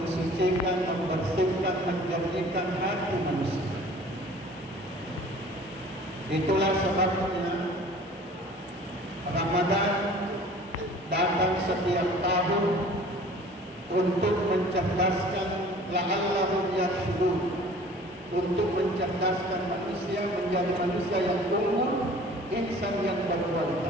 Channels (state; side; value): normal; both; correlation 0.48